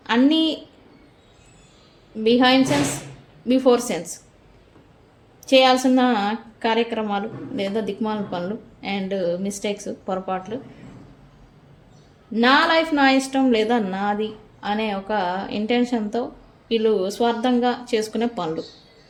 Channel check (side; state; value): both; identical; correlation 1.00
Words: అన్నీ బిహైండ్ సెన్స్ బిఫోర్ సెన్స్ చేయాల్సిన కార్యక్రమాలు లేదా దిక్మాల పనులు అండ్ మిస్టేక్స్, పొరపాట్లు, నా లైఫ్ నా ఇష్టం లేదా నాది అనే ఒక ఇంటెన్షన్తో వీళ్ళు స్వార్థంగా చేసుకునే పనులు.